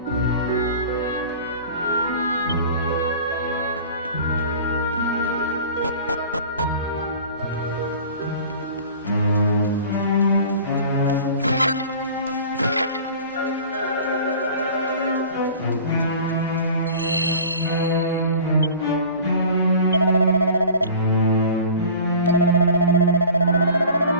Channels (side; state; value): both; inverted; correlation -0.42